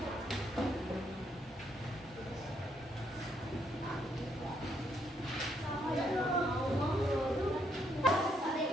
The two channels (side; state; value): both; normal; correlation 0.74